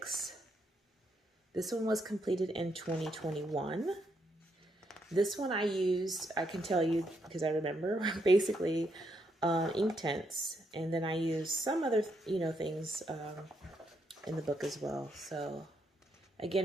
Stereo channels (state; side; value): normal; both; correlation 0.77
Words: This one was completed in 2021. This one I used, I can tell you because I remember, basically ink tints. And then I used some other, things in the book as well. So